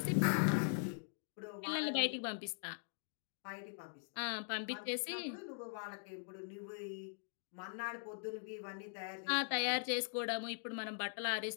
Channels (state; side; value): silent; right; digital silence